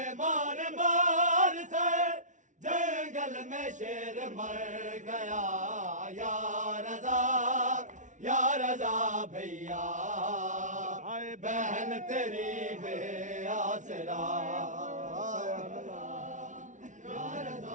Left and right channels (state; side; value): late; left; 0.37 ms